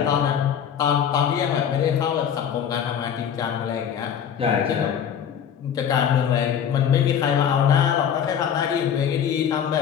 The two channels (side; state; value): right; quieter; 8.5 dB